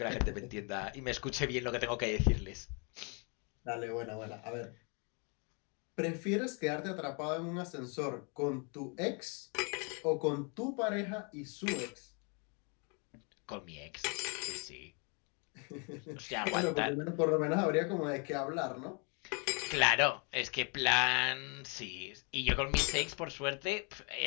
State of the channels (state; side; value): quieter; right; 35.6 dB